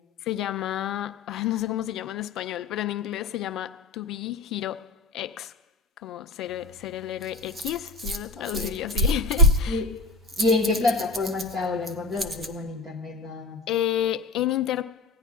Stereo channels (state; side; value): quieter; right; 3.8 dB